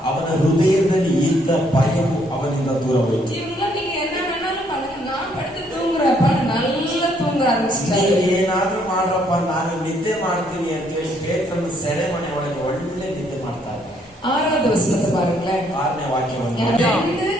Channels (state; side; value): normal; both; correlation 0.68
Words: ಅವನ ಹೃದಯದಲ್ಲಿ ಇದ್ದ ಭಯವು ಅವನಿಂದ ದೂರ ಹೋಯಿತು. ಇವ್ರನ್ನ நீங்க என்ன வேணாலும் பண்ணுங்க, நான் படுத்து தூங்குறப்ப நல்லா தூங்க ಆರಂಭಿಸಿದ್ದಾರೆ. ಏನಾದ್ರೂ ಮಾಡ್ರಪ್ಪ, ನಾನು ನಿದ್ದೆ ಮಾಡ್ತೀನಿ ಅಂತ ಹೇಳಿ ಪೇತ್ರನ ಸೆರೆಮನೆ ಒಳಗೆ ಒಳ್ಳೆ ನಿದ್ದೆ ಮಾಡ್ತಾ ಇದ್ದಾರೆ. 6வது ವಚನத்தை பாருங்களேன். 6ನೇ